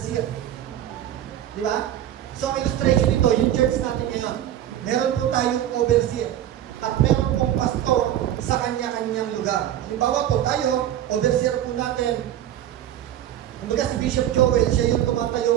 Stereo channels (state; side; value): quieter; left; 11.7 dB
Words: Di ba? So, ang illustration nito, yung church natin ngayon, meron po tayong overseer at meron pong pastor sa kanya-kanyang lugar. Halimbawa po, tayo, overseer po natin. Kumbaga si Bishop Joel, siya yung